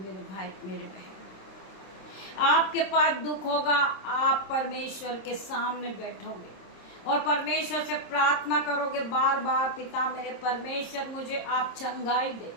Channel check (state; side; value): late; right; 26 ms